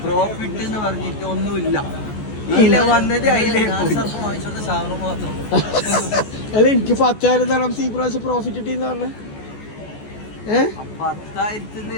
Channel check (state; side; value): late; right; 14 ms